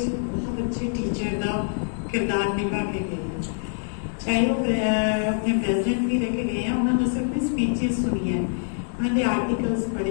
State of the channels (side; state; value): right; silent; digital silence